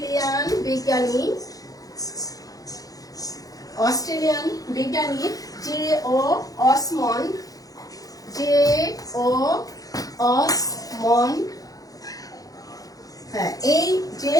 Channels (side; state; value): right; late; 0.17 ms